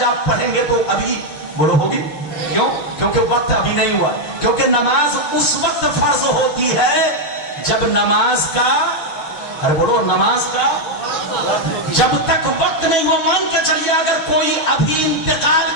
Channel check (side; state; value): right; late; 6.8 ms